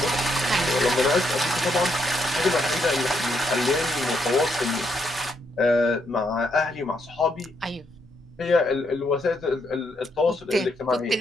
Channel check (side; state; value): both; normal; correlation 0.76